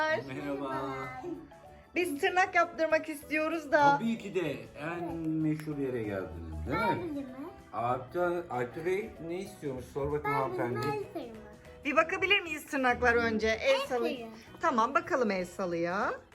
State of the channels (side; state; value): both; identical; correlation 1.00